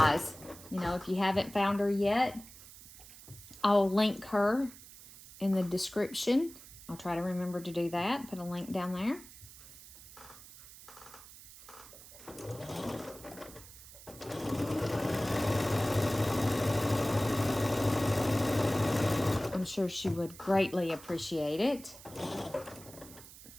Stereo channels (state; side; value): noise; right; hiss, 18 dB below the sound